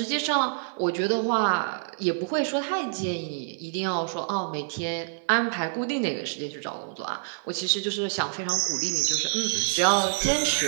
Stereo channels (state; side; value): silent; left; 55 dB below the other